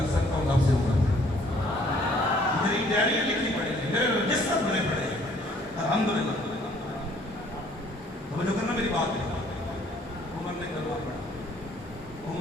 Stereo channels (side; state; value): both; normal; correlation 0.60